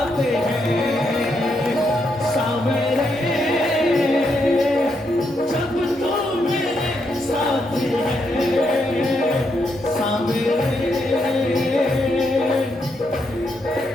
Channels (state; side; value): normal; both; correlation 0.79